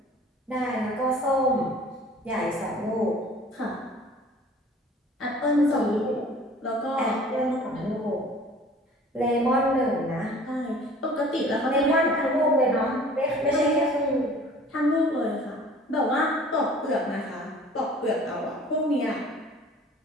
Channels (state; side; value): normal; both; correlation 0.48